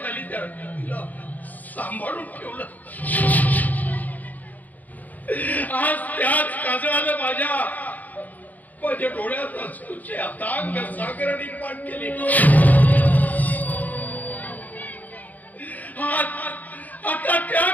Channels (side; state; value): right; late; 0.081 ms